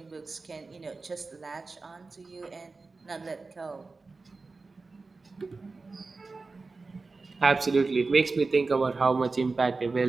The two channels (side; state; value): left; quieter; 3.9 dB